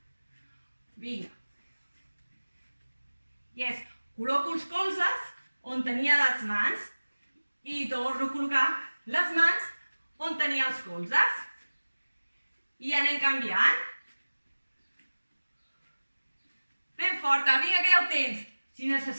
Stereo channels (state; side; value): inverted; both; correlation -1.00